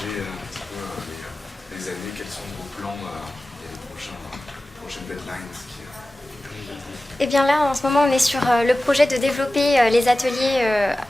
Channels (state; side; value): normal; both; correlation 0.95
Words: un petit peu les années, quels sont vos plans et les prochaines deadlines Eh bien là, en ce moment, on est sur le projet de développer les ateliers